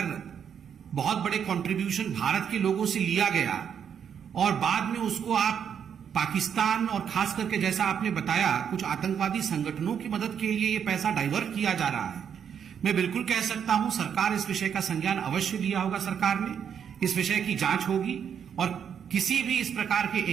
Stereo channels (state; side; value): quieter; left; 8.0 dB